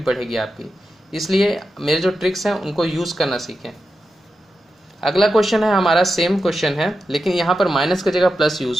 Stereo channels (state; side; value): normal; both; correlation 0.90